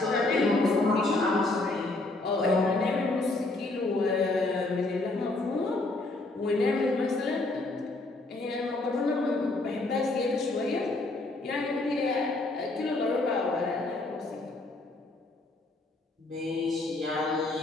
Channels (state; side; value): quieter; right; 3.0 dB